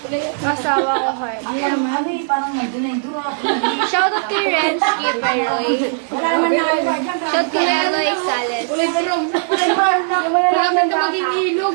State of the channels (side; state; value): left; silent; digital silence